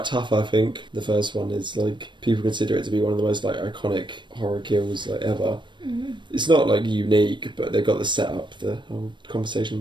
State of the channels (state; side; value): late; left; 0.22 ms